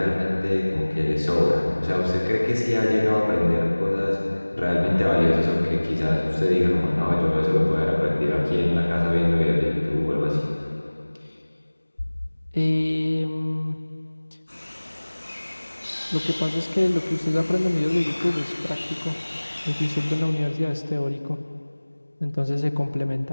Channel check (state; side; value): inverted; both; correlation -1.00